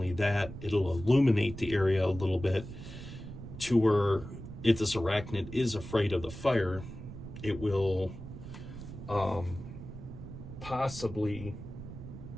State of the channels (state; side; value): noise; right; rumble, 11 dB below the sound